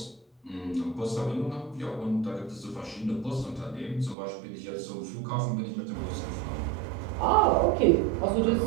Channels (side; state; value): left; drops out; at 4.2 s